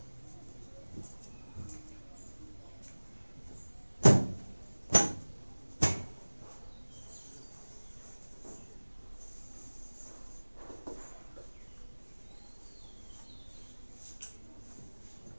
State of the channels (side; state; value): both; inverted; correlation -1.00